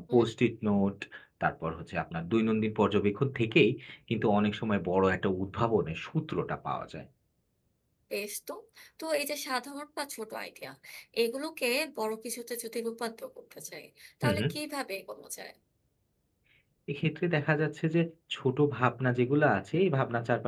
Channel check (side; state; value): both; identical; correlation 1.00